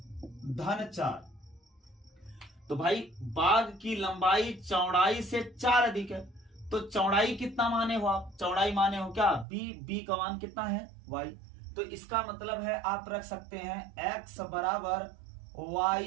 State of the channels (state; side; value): drops out; left; at 9.5 s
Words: धन 4, तो भाई बाग की लंबाई चौड़ाई से 4 अधिक है, तो चौड़ाई कितना माने हो आप, चौड़ाई माने हो क्या, b का मान कितना है, y, तो इसका मतलब है आप रख सकते हैं x बराबर y